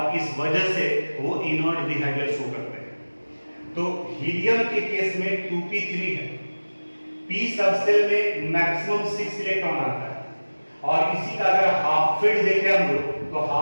इस वजह से वो इनर्ट बिहेवियर शो करते हैं। तो हीलियम के केस में 2p3 है। p सबसेल में मैक्सिमम 6 इलेक्ट्रॉन आता है, और इसी का अगर हाफ फील्ड देखें हम लोग तो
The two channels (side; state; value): both; inverted; correlation -1.00